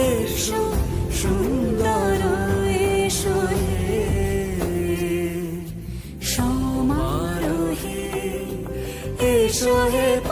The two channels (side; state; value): both; identical; correlation 1.00